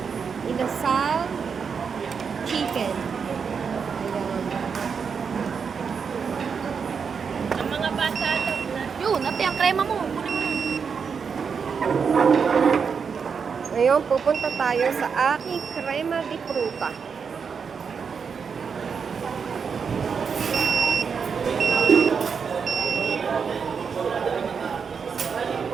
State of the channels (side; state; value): left; quieter; 6.1 dB